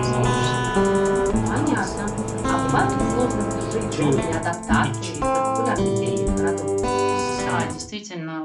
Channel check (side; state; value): both; identical; correlation 1.00